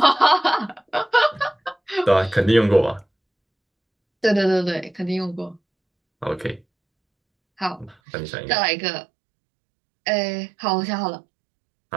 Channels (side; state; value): left; drops out; at 8.0 s